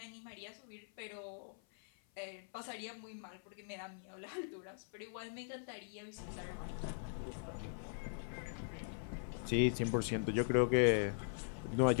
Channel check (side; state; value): right; silent; 50 dB below the other